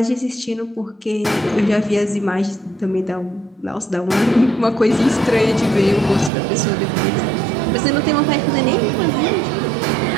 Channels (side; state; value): left; drops out; at 6.3 s